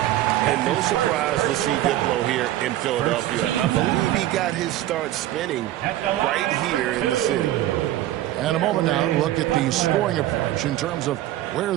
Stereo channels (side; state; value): left; quieter; 14.0 dB